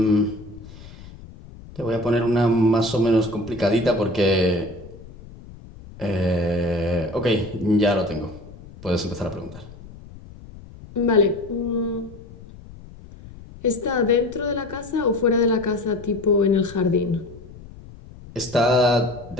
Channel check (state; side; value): noise; left; rumble, 18 dB below the sound